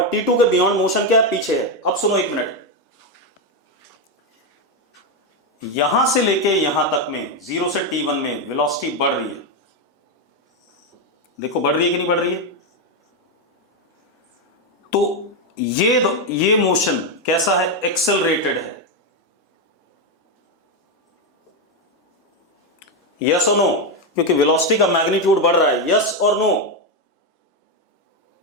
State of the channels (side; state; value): both; normal; correlation 0.06